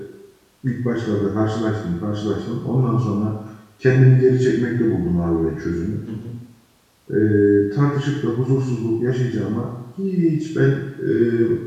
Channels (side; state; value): both; identical; correlation 1.00